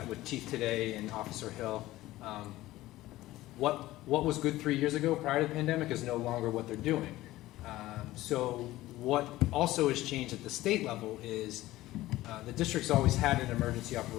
with Chief today and Officer Hill, what was good 3 years ago prior to the pandemic is no longer what they're doing. So what also has changed at the state level is the district's always had an emergency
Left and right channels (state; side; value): quieter; right; 16.7 dB